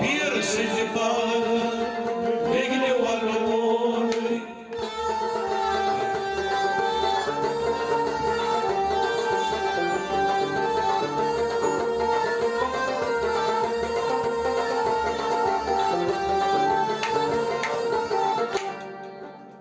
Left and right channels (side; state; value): both; identical; correlation 1.00